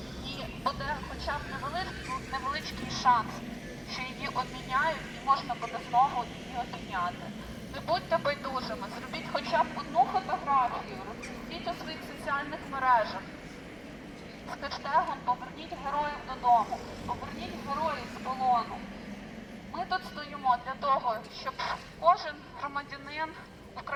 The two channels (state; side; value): identical; both; correlation 1.00